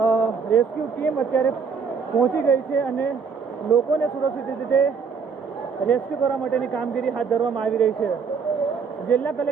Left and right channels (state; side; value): quieter; left; 5.8 dB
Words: રેસ્ક્યુ ટીમ અત્યારે પહોંચી ગઈ છે અને લોકોને સુરક્ષિત રીતે રેસ્ક્યુ કરવા માટેની કામગીરી હાથ ધરવામાં આવી રહી છે. જિલ્લા